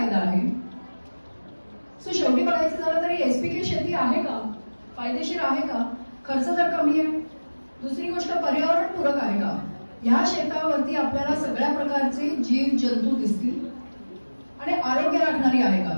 आहे. सो शेवटी बघायचं झालं तरी एसपीके शेती आहे का, फायदेशीर आहे का, खर्च जर कमी आहे, दुसरी गोष्ट पर्यावरणपूरक आहे का. ह्या शेतावरती आपल्याला सगळ्या प्रकारचे जीव जंतू दिसतील आणि आरोग्य राखणारी आहे का,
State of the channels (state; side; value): inverted; both; correlation -1.00